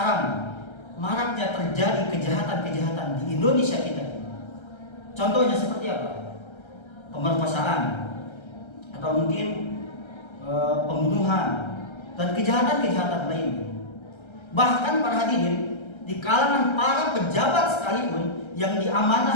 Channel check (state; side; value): late; right; 1.3 ms